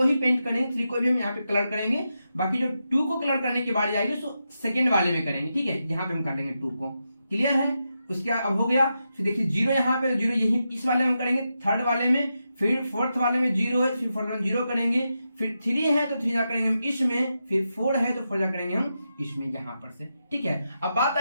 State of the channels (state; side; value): inverted; both; correlation -0.87